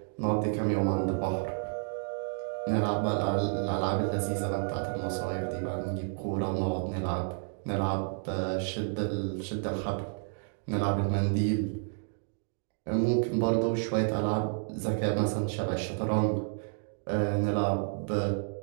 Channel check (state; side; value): silent; left; digital silence